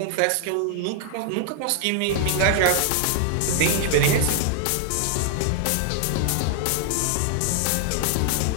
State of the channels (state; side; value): different; both; correlation 0.00